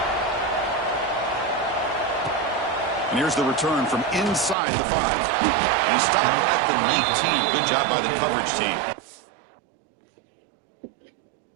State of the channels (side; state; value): left; drops out; at 4.5 s